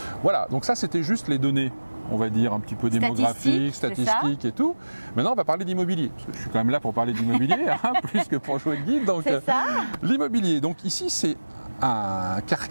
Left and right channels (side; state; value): both; inverted; correlation -1.00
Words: Voilà, donc ça c'était juste les données, on va dire un petit peu démographiques, statistiques et tout. Maintenant on va parler d'immobilier, parce que je suis quand même là pour parler d'immobilier, plus que pour jouer le guide. Donc l'immobilier, donc ici c'est un